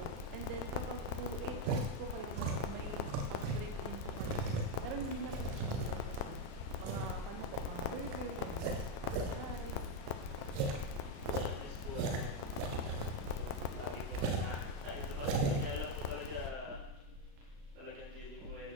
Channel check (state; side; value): late; left; 34 ms